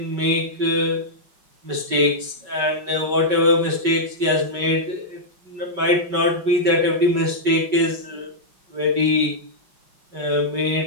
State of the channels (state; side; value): late; left; 5.3 ms